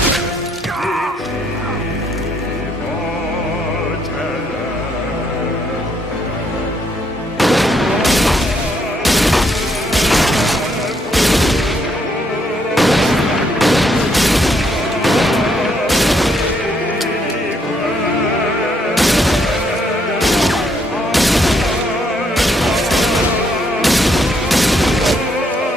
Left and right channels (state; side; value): normal; both; correlation 0.72